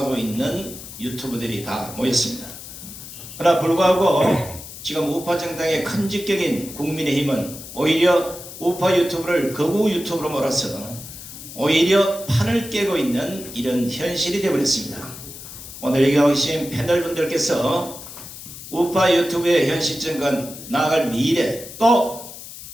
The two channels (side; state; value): left; noise; hiss, 13 dB below the sound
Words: 있는 유튜브들이 다 모였습니다. 그러나 불구하고 지금 우파 정당의 큰 직격인 국민의힘은 오히려 우파 유튜브를 거구 유튜브로 몰아서 오히려 판을 깨고 있는 이런 현실이 되어버렸습니다. 오늘 여기 오신 패널분들께서 우파 유튜브의 현 시점과 나아갈 미래, 또